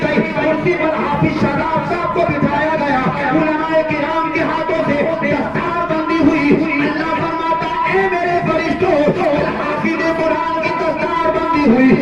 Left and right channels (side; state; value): right; noise; hum, 24 dB below the sound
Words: गई, कुर्सी पर हाफिज शादाब साहब को बिठाया गया। उलमाए किराम के हाथों से दस्तकार बंदी हुई। अल्लाह फरमाता है मेरे फरिश्तों, हाफिज कुरान की दस्तकार बंदी हुई।